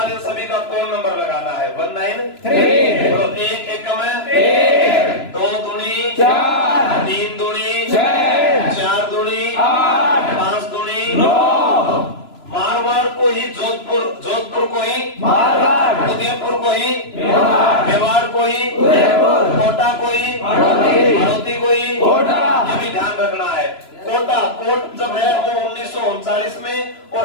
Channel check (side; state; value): right; late; 3.0 ms